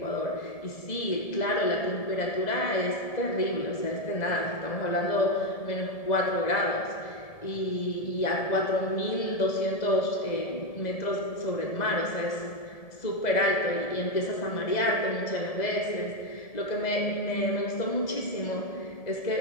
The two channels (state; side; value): late; right; 1.7 ms